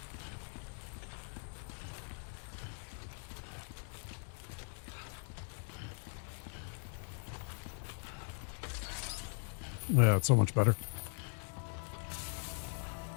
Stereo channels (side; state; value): right; silent; 51 dB below the other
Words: Yeah, it's so much better.